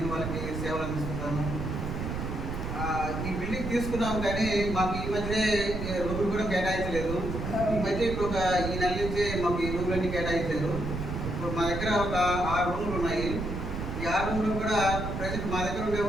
వాళ్ళకి సేవలు అందిస్తున్నాను. ఈ బిల్డింగ్ తీసుకున్నాము కానీ మాకు ఈ మధ్యనే రూములు కూడా కేటాయించలేదు. ఈ మధ్య ఇప్పుడు ఈ నెల నుంచే మాకు ఈ రూములన్నీ కేటాయించారు. ఇప్పుడు మా దగ్గర ఒక 6 రూములు ఉన్నాయి. ఈ 6 రూములు కూడా ప్రజెంట్ మా దగ్గర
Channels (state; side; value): noise; right; rumble, 4 dB below the sound